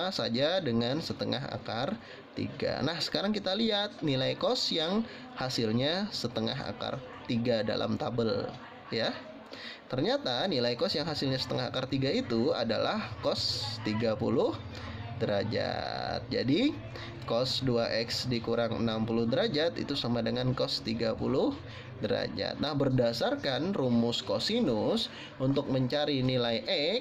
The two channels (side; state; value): both; identical; correlation 1.00